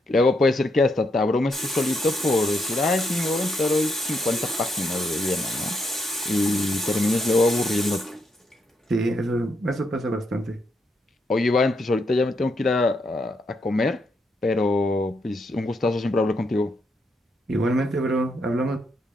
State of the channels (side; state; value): both; normal; correlation 0.78